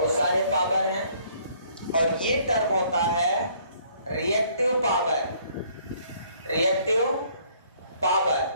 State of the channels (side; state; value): both; inverted; correlation -0.62